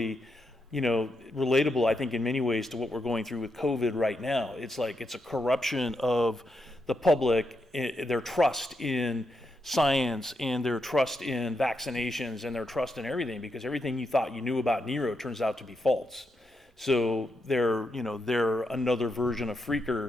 relatable, I think, in many ways to what we're going through with COVID right now. It's like it's a corruption of the public, their trust in science and their trust in vaccinations and their trust in everything, because everything you thought you knew about Nero turns out to be false. So they're another version of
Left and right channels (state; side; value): normal; both; correlation 0.83